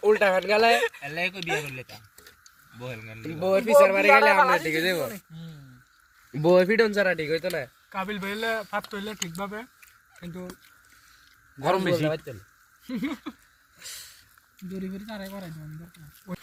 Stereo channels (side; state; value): both; identical; correlation 1.00